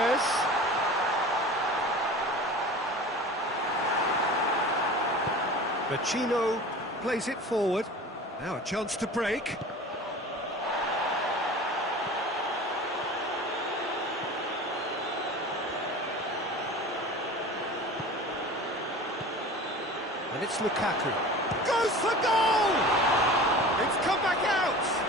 Vecino plays it forward. Now a chance to break. And it's Lukaku. Goes for goal! It's come back out!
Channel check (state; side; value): normal; both; correlation 0.38